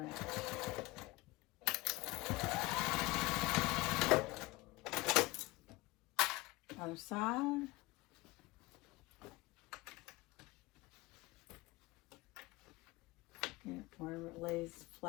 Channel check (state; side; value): quieter; right; 21.5 dB